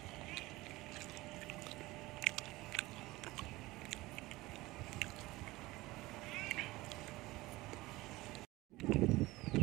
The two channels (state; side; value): quieter; left; 19.8 dB